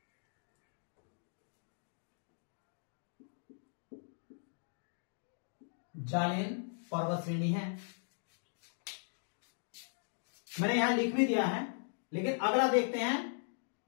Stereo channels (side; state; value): right; silent; digital silence